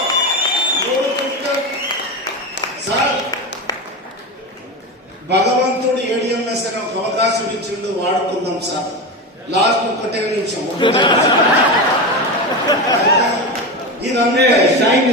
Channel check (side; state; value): both; normal; correlation 0.20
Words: భగవంతుడు ఏడిఎంఎస్ అనే ఒక అవకాశం ఇచ్చిండు, వాడుకుందాం సార్. లాస్ట్ ఒకటే నిమిషం. ఇదంతా शाइन